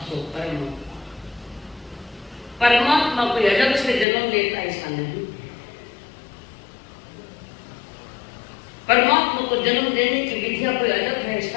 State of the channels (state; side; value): drops out; right; at 4.0 s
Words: सो कर्म। परमात्मा कोई अलग से जन्म लेता ऐसा नहीं। परमात्मा को जन्म देने की विधिया कोई अलग है ऐसा